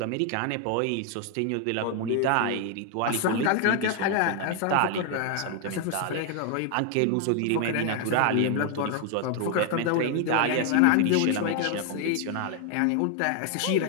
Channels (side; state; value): both; different; correlation 0.00